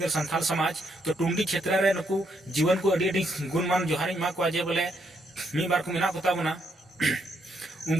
संथाल समाज तो टुंडी क्षेत्र रे नुकु जीवन को अडी गुणमान जोहारी मा को जे बोले मी बार को मिना कोता बना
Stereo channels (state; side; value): normal; both; correlation 0.76